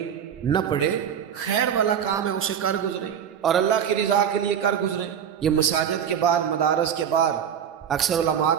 نہ پڑے، خیر والا کام ہے اسے کر گزریں اور اللہ کی رضا کے لیے کر گزریں۔ یہ مساجد کے بعد، مدارس کے بعد اکثر علماء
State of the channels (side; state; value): left; quieter; 8.5 dB